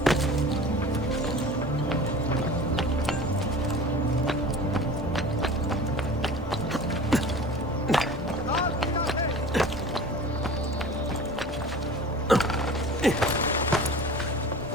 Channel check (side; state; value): both; normal; correlation 0.39